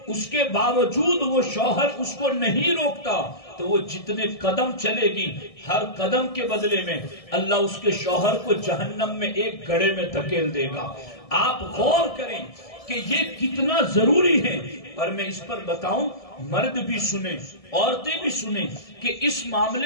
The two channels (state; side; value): late; right; 1.7 ms